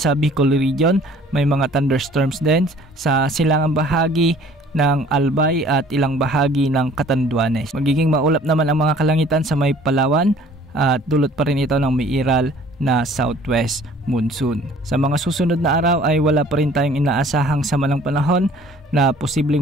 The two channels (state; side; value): normal; both; correlation 0.53